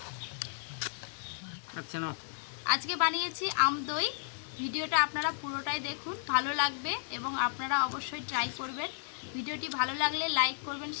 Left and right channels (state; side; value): silent; right; digital silence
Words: আচ্ছা না, আজকে বানিয়েছি আমদই। ভিডিওটা আপনারা পুরোটাই দেখুন, ভালো লাগবে এবং আপনারা অবশ্যই ট্রাই করবেন। ভিডিওটি ভালো লাগলে লাইক করবেন,